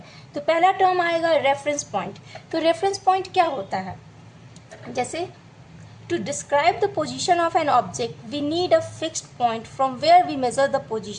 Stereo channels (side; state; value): both; identical; correlation 1.00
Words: तो पहला टर्म आएगा रेफरेंस पॉइंट। तो रेफरेंस पॉइंट क्या होता है? जैसे to describe the position of an object we need a fixed point from where we measure the